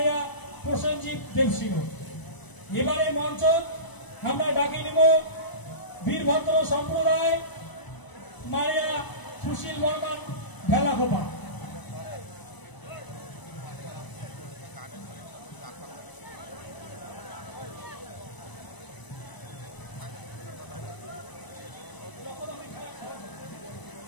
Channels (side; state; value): right; late; 1.0 ms